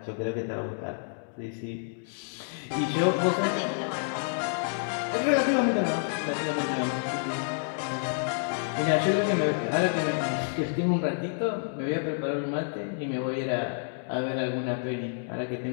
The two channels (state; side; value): silent; right; digital silence